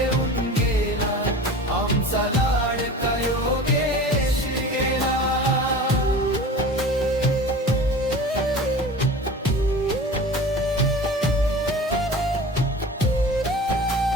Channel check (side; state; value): both; normal; correlation 0.37